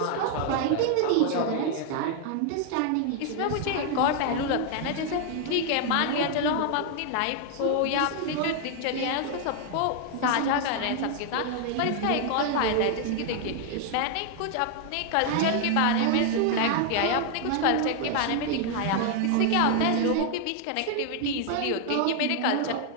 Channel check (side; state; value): both; different; correlation 0.00